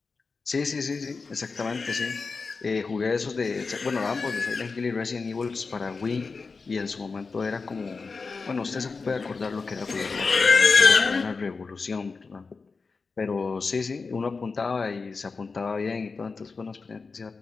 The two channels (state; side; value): quieter; right; 4.5 dB